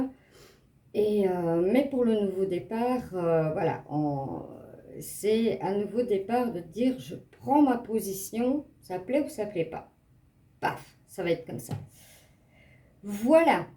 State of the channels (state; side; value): identical; both; correlation 1.00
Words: Et, mais pour le nouveau départ, voilà, c'est un nouveau départ de dire je prends ma position, ça plaît ou ça plaît pas. Paf, ça va être comme ça. Voilà